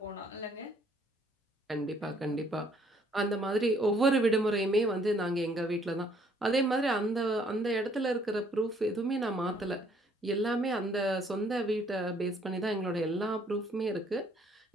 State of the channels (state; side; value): normal; both; correlation 0.64